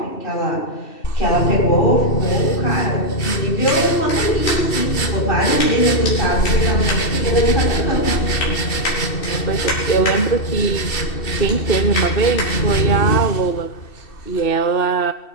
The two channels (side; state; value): right; late; 2.7 ms